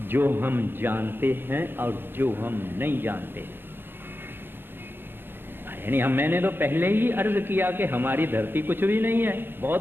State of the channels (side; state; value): left; late; 0.10 ms